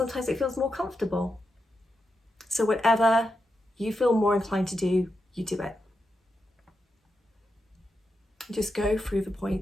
it feels more comfortable. So whatever you feel more inclined to do, you do it. Just go through the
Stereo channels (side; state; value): both; normal; correlation 0.86